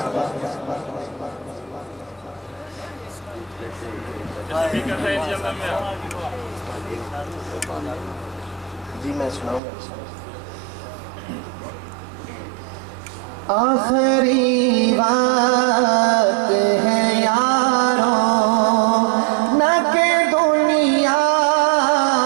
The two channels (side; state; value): left; drops out; at 9.6 s